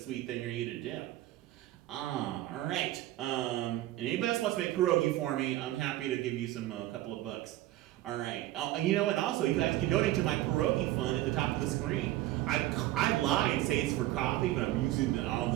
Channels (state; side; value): quieter; left; 15.5 dB